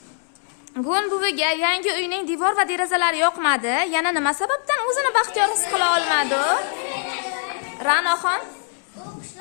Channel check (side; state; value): right; silent; 64 dB below the other